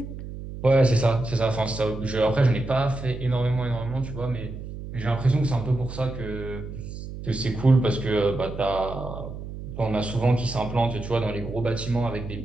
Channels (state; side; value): noise; right; hum, 10 dB below the sound